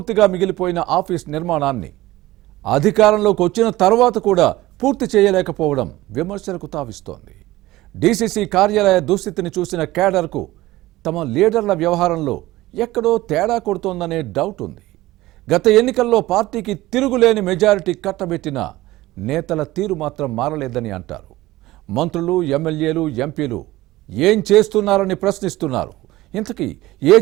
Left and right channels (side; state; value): left; quieter; 17.6 dB